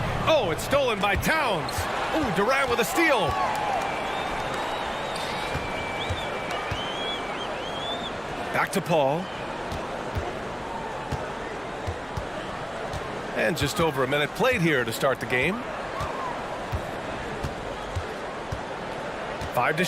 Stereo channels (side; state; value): both; identical; correlation 1.00